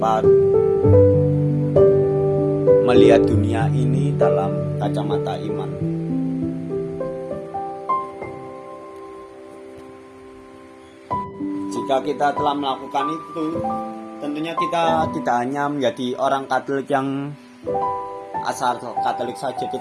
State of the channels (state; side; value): identical; both; correlation 1.00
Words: melihat dunia ini dalam kacamata iman. Jika kita telah melakukan itu, tentunya kita tidak hanya menjadi orang Katolik yang asal Katolik saja,